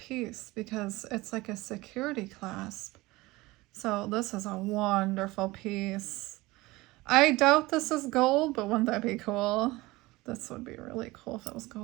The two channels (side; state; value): left; quieter; 20.5 dB